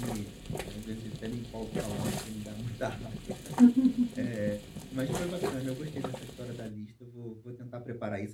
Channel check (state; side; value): identical; both; correlation 1.00